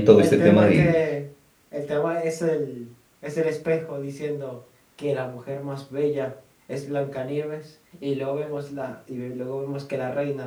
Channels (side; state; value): both; identical; correlation 1.00